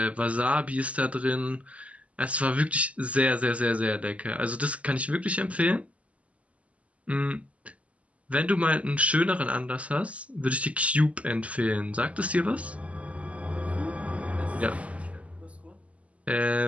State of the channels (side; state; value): left; late; 0.066 ms